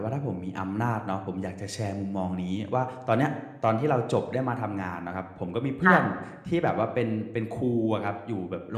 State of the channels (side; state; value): both; identical; correlation 1.00